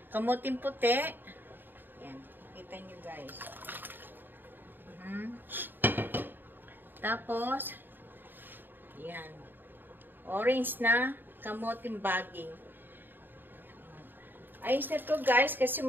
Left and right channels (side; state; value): left; late; 0.093 ms